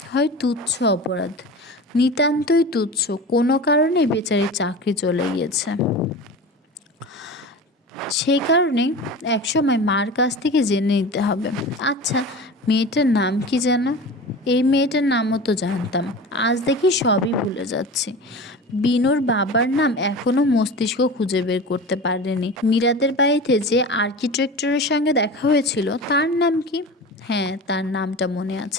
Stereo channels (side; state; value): both; normal; correlation 0.32